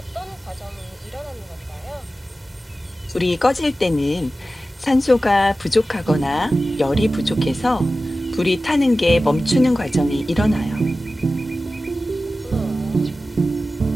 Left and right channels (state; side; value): normal; both; correlation 0.95